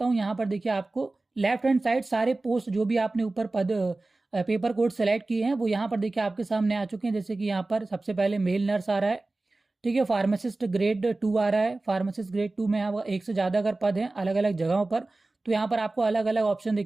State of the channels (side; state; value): left; quieter; 3.1 dB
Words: हूँ। यहाँ पर देखिए आपको लेफ्ट हैंड साइड सारे पोस्ट जो भी आपने ऊपर पद पेपर कोड सेलेक्ट किए हैं वो यहाँ पर देखिए आपके सामने आ चुके हैं। जैसे कि यहाँ पर सबसे पहले मेल नर्स आ रहा है, ठीक है। फार्मासिस्ट ग्रेड 2 आ रहा है। फार्मासिस्ट ग्रेड 2 में यहाँ एक से ज़्यादा अगर पद हैं अलग अलग जगहों पर, तो यहाँ पर आपको अलग अलग ऑप्शन